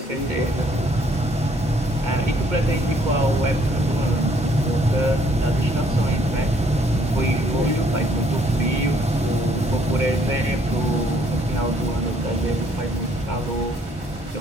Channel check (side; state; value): both; normal; correlation 0.65